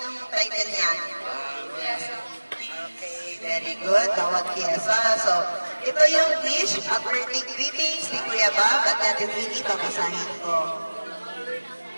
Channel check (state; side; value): inverted; both; correlation -1.00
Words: title niyan? Okay, very good. Tawag Kiesa. So, ito yung wish at birthday greetings ni Kuya Bob at Ate Winnie. Babasahin ko.